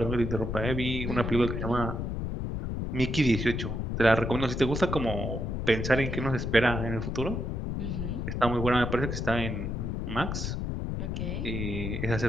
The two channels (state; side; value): noise; left; rumble, 3 dB below the sound